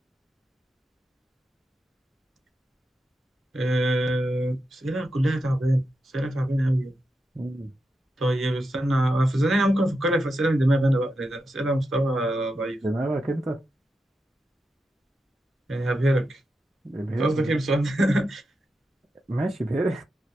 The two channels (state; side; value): normal; both; correlation 0.88